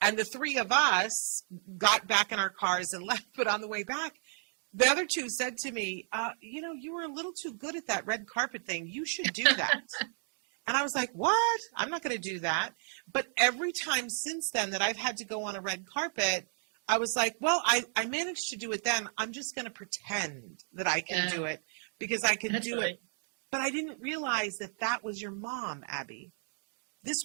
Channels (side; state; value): left; silent; 56 dB below the other